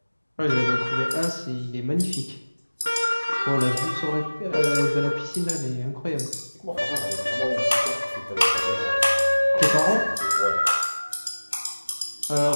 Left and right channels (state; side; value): inverted; both; correlation -1.00